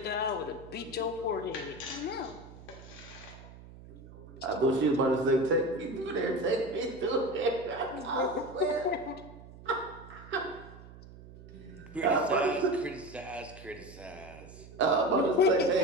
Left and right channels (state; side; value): noise; right; hum, 18 dB below the sound